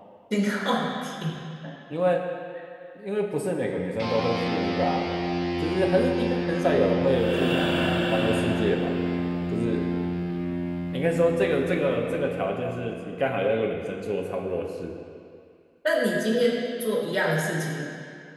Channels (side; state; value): both; identical; correlation 1.00